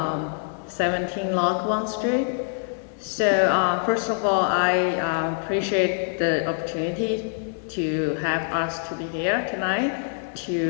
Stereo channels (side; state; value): right; silent; 58 dB below the other